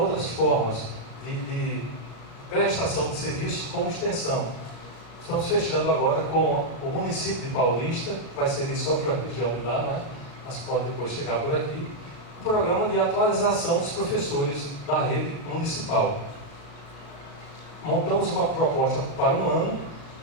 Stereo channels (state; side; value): late; right; 36 ms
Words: formas de prestação de serviços como extensão. Estamos fechando agora com o município de Paulista, que vai servir só para a região de lá, não é? Mas pode depois chegar por aqui. Um programa de atualização dos professores da rede municipal. Montamos uma proposta para um ano,